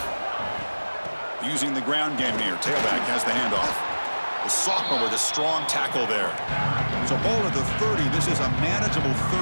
Using the ground game here. Tailback has the handoff. The sophomore with a strong tackle there. So ball at the 30. This is a manageable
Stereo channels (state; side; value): inverted; both; correlation -1.00